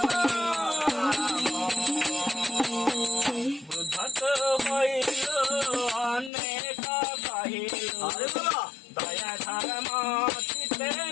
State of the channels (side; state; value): right; drops out; at 6.3 s